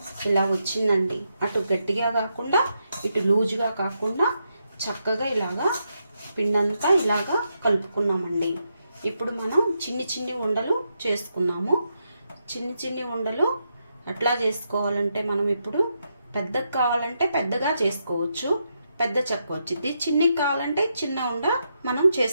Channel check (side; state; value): both; inverted; correlation -0.83